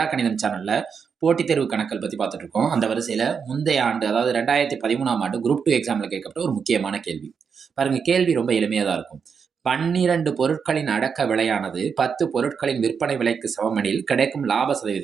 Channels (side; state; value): left; quieter; 6.3 dB